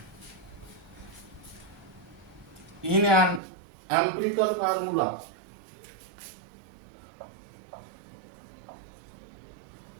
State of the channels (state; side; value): drops out; left; at 3.4 s